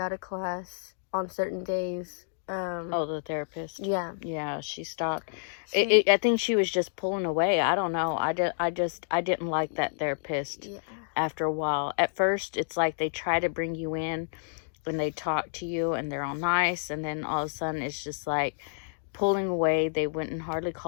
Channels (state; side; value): silent; right; digital silence